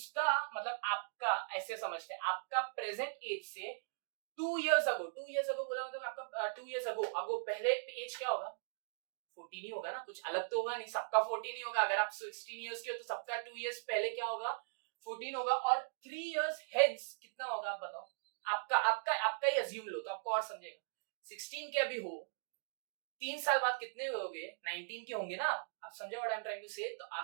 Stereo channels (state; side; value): silent; left; digital silence